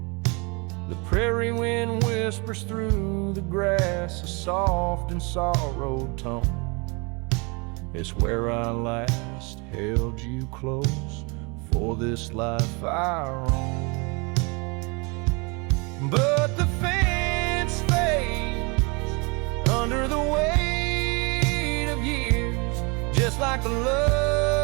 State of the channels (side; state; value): left; quieter; 30.1 dB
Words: The prairie wind whispers through the grass a soft and sorrowed tone. It's where I last held you close for this life I roam. But the fence fades under the weight of years, just like the